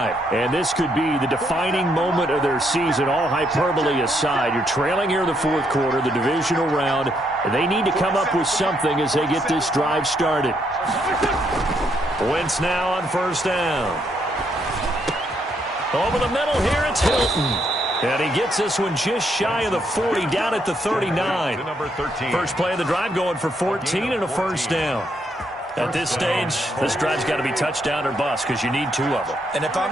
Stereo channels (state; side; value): normal; both; correlation 0.75